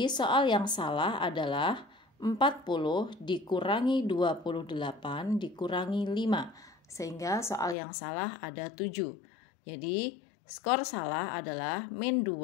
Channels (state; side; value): drops out; right; at 7.8 s